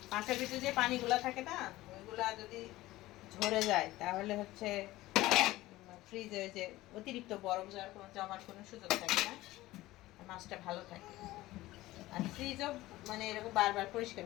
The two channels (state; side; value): quieter; right; 17.4 dB